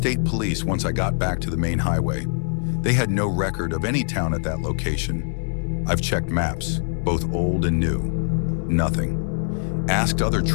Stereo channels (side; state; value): right; silent; digital silence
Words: police once I got back to the main highway. They had no record of any town at that location. I've checked maps, both old and new. Nothing. Asked other